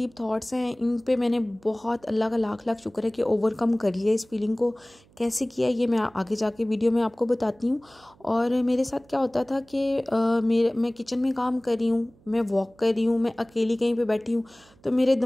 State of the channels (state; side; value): noise; right; hum, 29 dB below the sound